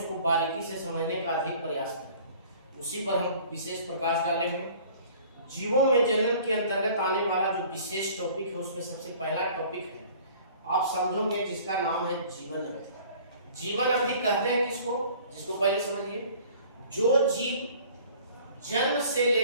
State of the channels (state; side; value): inverted; both; correlation -0.50